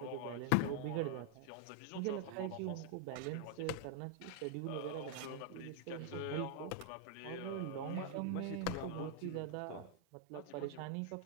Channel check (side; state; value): both; different; correlation 0.00